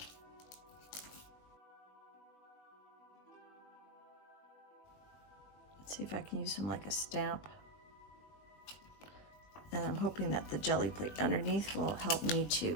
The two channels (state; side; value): late; right; 20 ms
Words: Let's see if I can use him like a stamp. And I'm hoping that the jelly plate underneath will help me